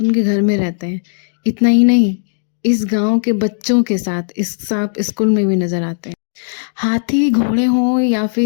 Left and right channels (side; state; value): right; silent; 69 dB below the other